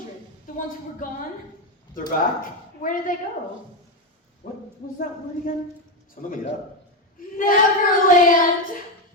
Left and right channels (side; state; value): both; normal; correlation 0.10